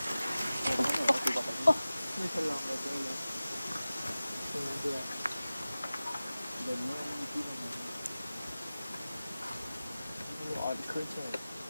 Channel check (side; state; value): both; inverted; correlation -0.97